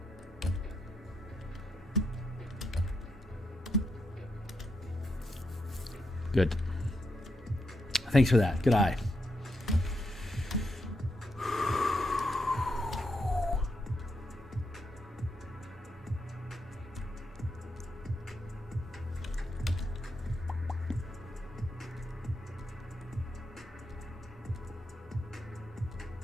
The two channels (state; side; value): normal; both; correlation 0.82